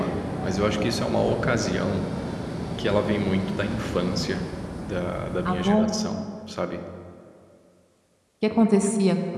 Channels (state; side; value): identical; both; correlation 1.00